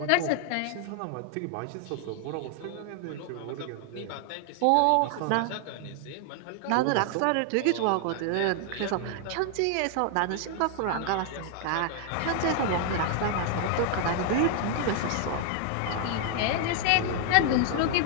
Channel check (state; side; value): different; both; correlation 0.00